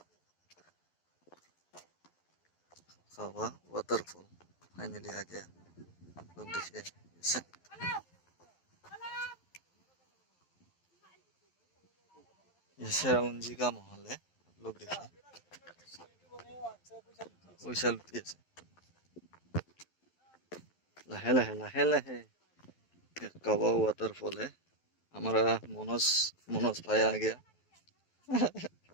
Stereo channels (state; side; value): late; right; 11 ms